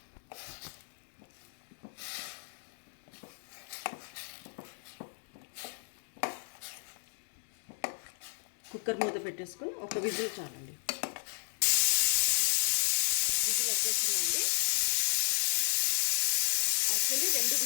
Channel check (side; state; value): right; silent; digital silence